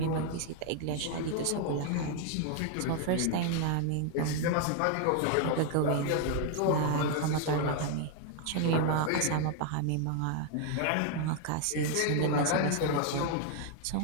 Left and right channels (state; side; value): different; both; correlation 0.00